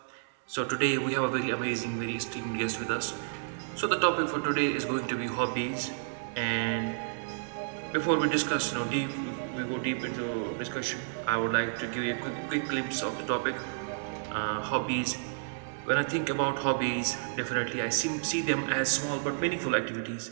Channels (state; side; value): silent; left; digital silence